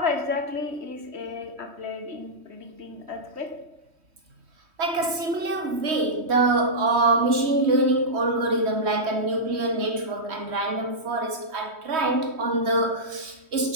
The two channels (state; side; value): late; left; 3.1 ms